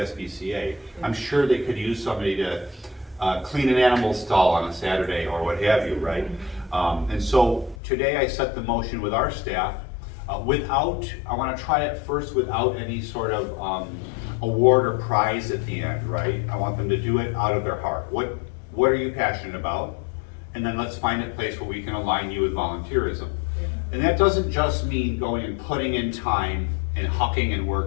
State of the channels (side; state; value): right; drops out; at 7.8 s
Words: I'm sure they could use somebody to clean an animal stall on a Saturday or what have you, right? And so today I set the motion with our staff I want to try it first without any sort of award or prize at the end, right? I want them to do it out of their heart. What are you passionate about? And then let's find a place where we can align you with volunteerism. And that doesn't just mean going and putting in time and hucking and